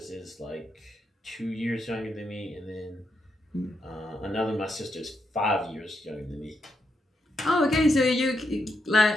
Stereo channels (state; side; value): normal; both; correlation 0.81